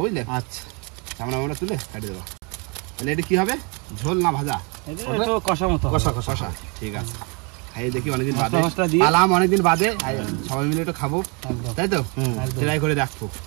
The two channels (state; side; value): quieter; left; 32.4 dB